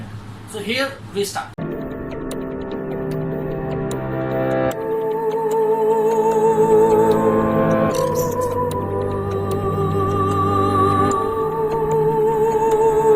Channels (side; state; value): both; identical; correlation 1.00